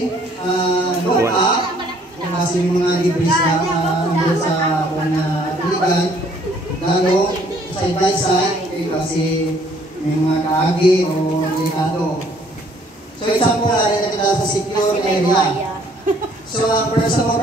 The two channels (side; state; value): both; normal; correlation 0.61